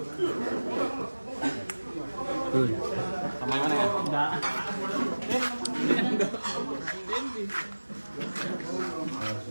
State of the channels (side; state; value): both; inverted; correlation -1.00